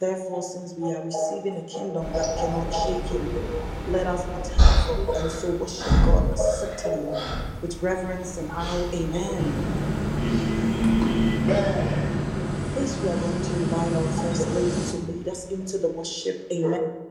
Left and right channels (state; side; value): identical; both; correlation 1.00